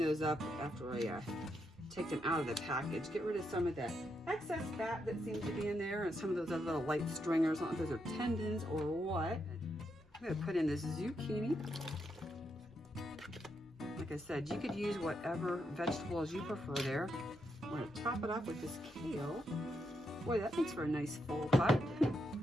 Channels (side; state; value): both; normal; correlation 0.81